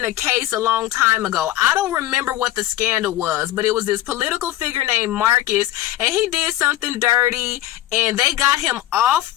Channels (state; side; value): quieter; right; 14.3 dB